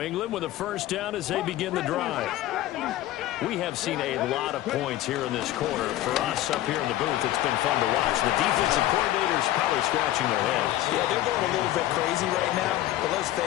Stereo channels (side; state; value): right; quieter; 14.5 dB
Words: England with a first down as they begin the drive. We have seen a lot of points here in this quarter. For us up here in the booth, it's been fun to watch. The defensive coordinators probably scratching their heads. Yeah, they're going a little bit crazy right now, but let's